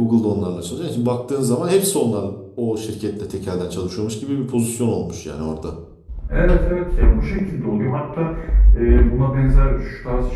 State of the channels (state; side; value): identical; both; correlation 1.00